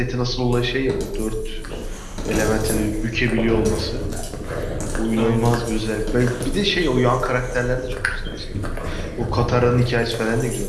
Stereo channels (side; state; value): both; identical; correlation 1.00